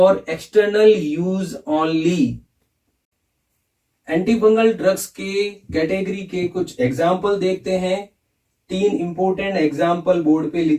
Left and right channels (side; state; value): both; identical; correlation 1.00